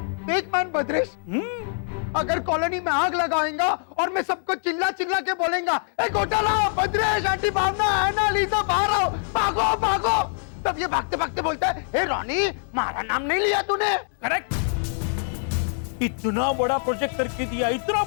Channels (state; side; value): silent; right; 62 dB below the other